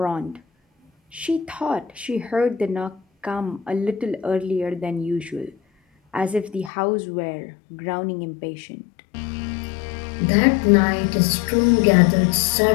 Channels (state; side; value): drops out; right; at 6.7 s